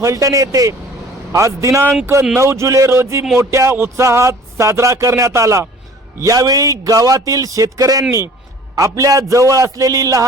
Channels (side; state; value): both; normal; correlation 0.49